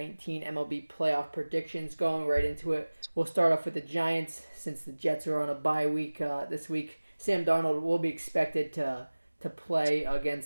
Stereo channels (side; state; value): both; inverted; correlation -1.00